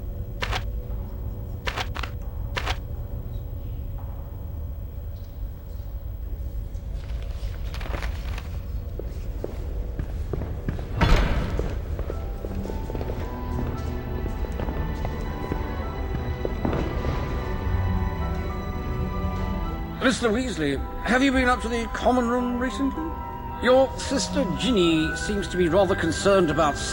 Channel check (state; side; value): identical; both; correlation 1.00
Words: Mr. Weasley, have you been up to the common room recently? Your sister Ginny seems to be rather concerned about